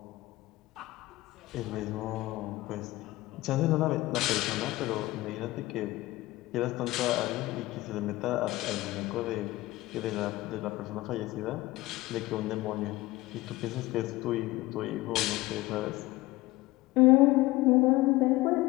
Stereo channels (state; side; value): quieter; right; 19.0 dB